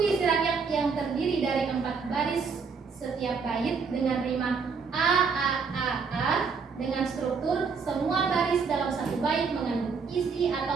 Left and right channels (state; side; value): quieter; left; 5.3 dB